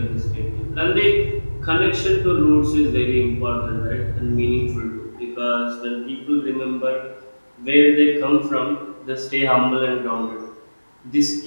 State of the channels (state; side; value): inverted; both; correlation -1.00